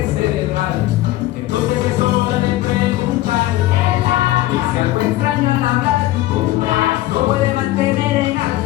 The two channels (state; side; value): quieter; right; 16.0 dB